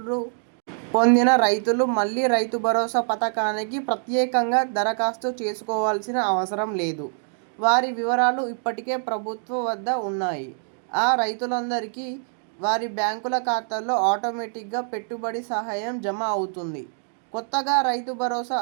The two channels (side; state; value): left; silent; 62 dB below the other